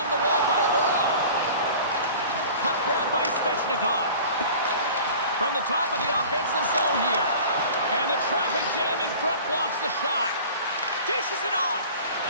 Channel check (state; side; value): inverted; both; correlation -0.42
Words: the wall by Orlov. Puck grab by Svechnikov. From the top of the offensive zone here. And the traffic jam in front blocks the shot. Dishes it off.